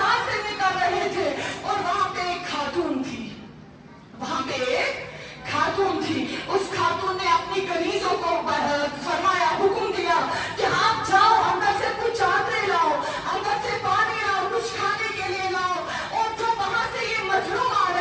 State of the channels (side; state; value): both; identical; correlation 1.00